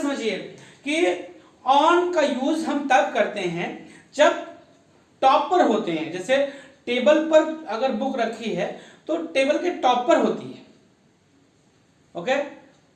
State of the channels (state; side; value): identical; both; correlation 1.00